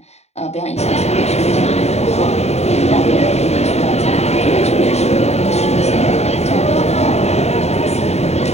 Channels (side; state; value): right; late; 0.31 ms